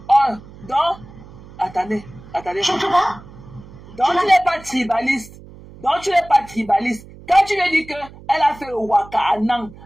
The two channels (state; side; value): noise; right; hum, 19 dB below the sound